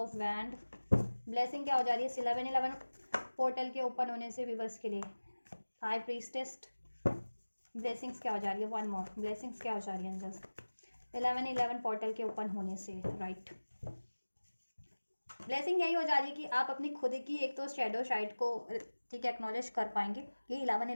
wand. Blessing क्या हो जा रही है इस 11-11 पोर्टल के ओपन होने से व्यूअर्स के लिए? High priestess. ब्लेसिंग्स क्या हो जा रही है? वन मोर, ब्लेसिंग्स क्या हो जा रही है एंजल्स 11-11 पोर्टल के ओपन होने से? राइट, ब्लेसिंग यही हो जा रही है कि आप अपनी खुद की एक तो शेडो साइड को, ठीक है, एक्नॉलेज कर पाएंगे कि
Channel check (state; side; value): inverted; both; correlation -1.00